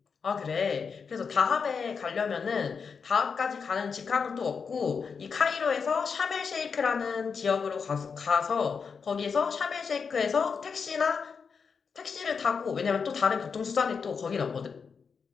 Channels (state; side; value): quieter; right; 5.7 dB